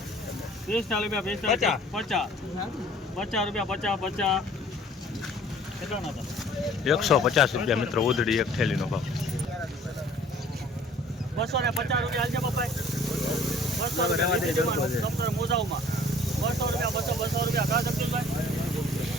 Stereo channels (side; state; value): both; normal; correlation 0.53